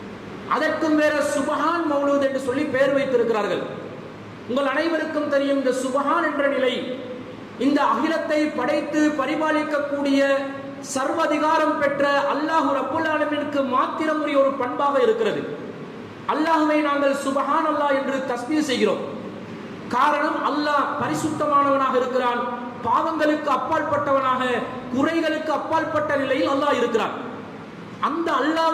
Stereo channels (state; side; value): identical; both; correlation 1.00